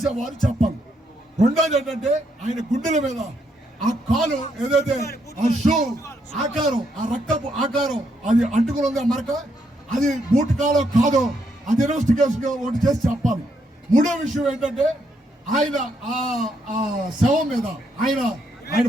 చెప్పాలి. రెండోది ఏంటంటే ఆయన గుండెల మీద ఆ కాలు ఏదైతే ఆ షూ ఆకారం, ఆ రక్తపు ఆకారం అది అంటుకుని ఉంది, ఆ మరక, అది బూట్ కాలో కాదో అది ఇన్వెస్టిగేషన్ ఒకటి చేసి చెప్పాలి. మూడో విషయం ఏంటంటే ఆయన ఆ శవం మీద ఆయన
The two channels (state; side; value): normal; both; correlation 0.76